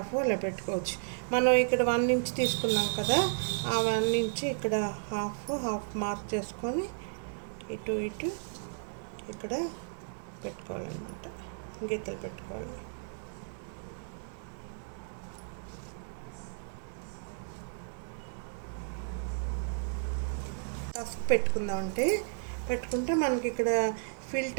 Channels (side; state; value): left; silent; digital silence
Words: అలా పెట్టుకోవచ్చు. మనం ఇక్కడ 1 ఇంచ్ తీసుకున్నాం కదా, ఆ 1 ఇంచ్ ఇక్కడ హాఫ్ మార్క్ చేసుకొని ఇటు ఇక్కడ పెట్టుకోవాలన్నమాట, గీతలు పెట్టుకోవాలి. టఫ్ పెట్టుకుంటే మనకి ఇక్కడ